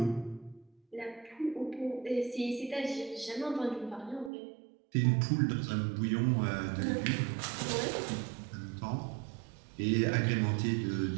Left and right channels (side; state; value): left; drops out; at 4.3 s